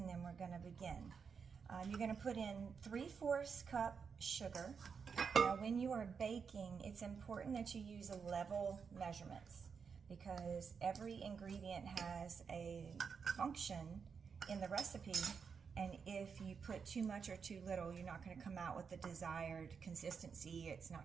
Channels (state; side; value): quieter; left; 6.0 dB